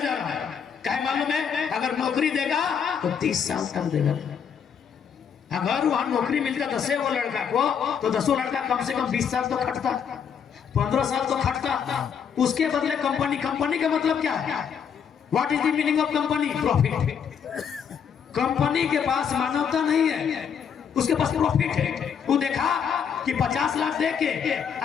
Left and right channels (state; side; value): quieter; right; 7.4 dB